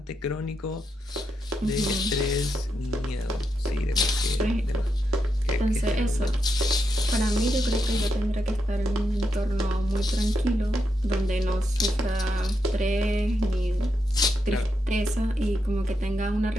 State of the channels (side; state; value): both; normal; correlation 0.83